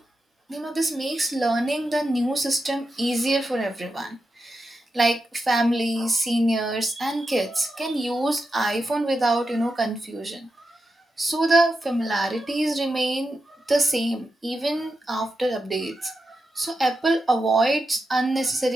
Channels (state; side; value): normal; both; correlation 0.88